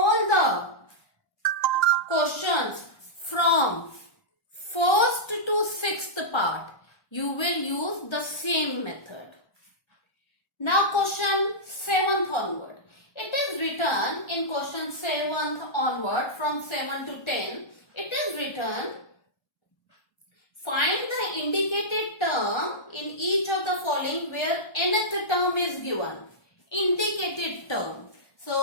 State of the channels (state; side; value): late; right; 1.2 ms